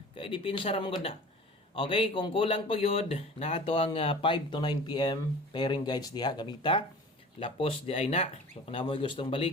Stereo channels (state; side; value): normal; both; correlation 0.41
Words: kay dipinsa ra man gud na. Okay, kung kulang pa gyud na ato ang 5 to 9 PM pairing guides diha gamita. Lapos di ay na. So kung namoy gustong